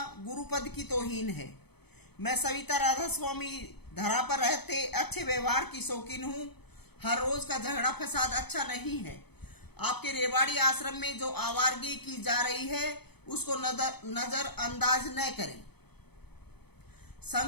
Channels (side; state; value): right; late; 0.98 ms